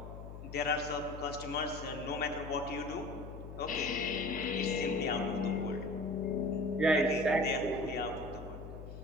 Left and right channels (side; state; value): left; noise; hum, 11 dB below the sound